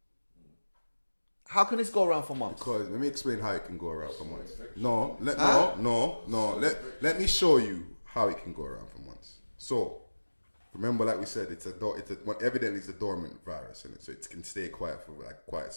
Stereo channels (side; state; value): both; inverted; correlation -1.00